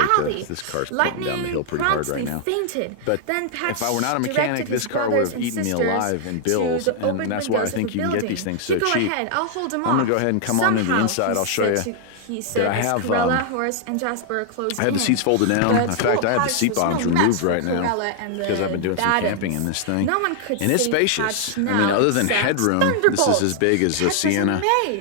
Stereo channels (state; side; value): different; both; correlation 0.00